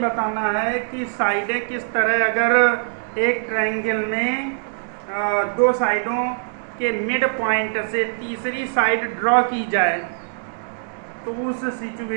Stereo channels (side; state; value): left; silent; digital silence